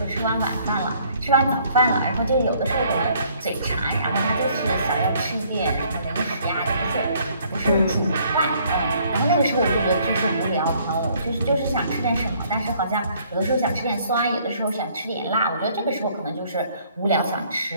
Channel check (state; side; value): inverted; both; correlation -0.62